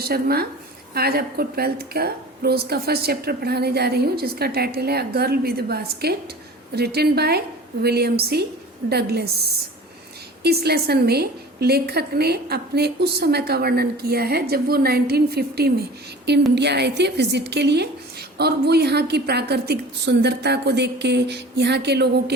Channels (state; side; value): normal; both; correlation 0.41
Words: आज आपको 12th का प्रोज का फर्स्ट चैप्टर पढ़ाने जा रही हूँ, जिसका टाइटल है a girl with basket, written by William C Douglas. इस लेसन में लेखक ने अपने उस समय का वर्णन किया है जब वो 1950 में इंडिया आए थे विजिट के लिए, और वो यहाँ की प्राकृतिक सुंदरता को देख के, यहाँ के लोगों